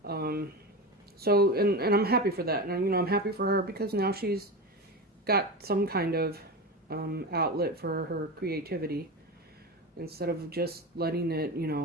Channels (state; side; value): normal; both; correlation 0.23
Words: So I'm happy for that, and I'm happy for her because now she's got some kind of outlet for her creativity instead of just letting it